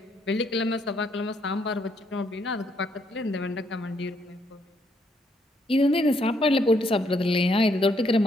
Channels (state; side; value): normal; both; correlation 0.72